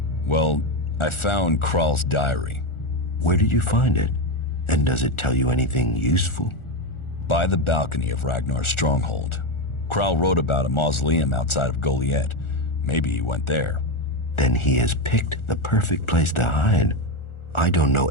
Well, I found Kral's diary. Where did you find it? And does it tell you anything useful? By the balcony of Ragnar's stronghold. Kral wrote about a mausoleum outside of Goliath. Maybe he went there. Then he has picked the perfect place to hide. I don't know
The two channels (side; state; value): right; late; 1.4 ms